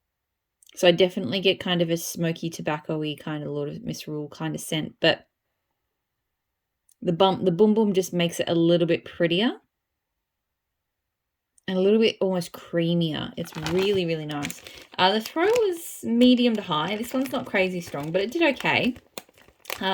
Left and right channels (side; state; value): both; identical; correlation 1.00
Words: So I definitely get kind of a smoky tobacco-y kind of Lord of Misrule kind of scent, but the Boom Boom just makes it a little bit prettier and a little bit almost creamier. It's really, really nice. The throw was medium to high. This one's not crazy strong, but it did okay.